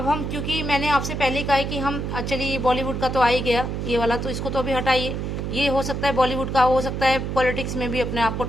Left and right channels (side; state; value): right; noise; hum, 3 dB below the sound